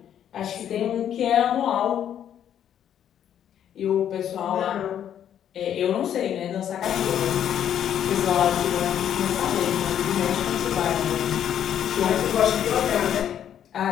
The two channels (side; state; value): right; quieter; 9.8 dB